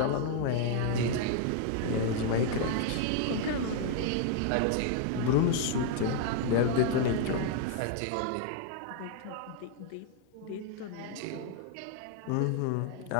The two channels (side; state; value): both; different; correlation 0.00